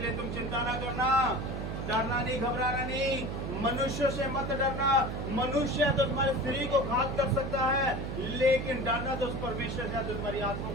तुम चिंता ना करना, डरना नहीं, घबराना नहीं, मनुष्य से मत डरना। मनुष्य तो तुम्हारे शरीर को घात कर सकता है, लेकिन डरना तो उस परमेश्वर से जो तुम्हारी आत्मा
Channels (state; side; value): noise; right; hum, 4 dB below the sound